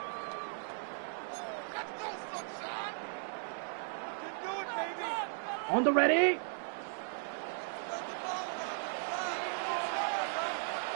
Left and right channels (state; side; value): silent; left; digital silence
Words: On the ready.